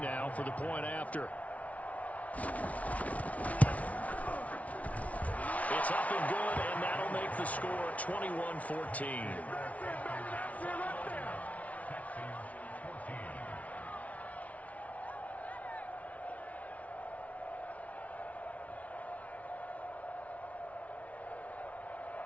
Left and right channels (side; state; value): right; late; 0.068 ms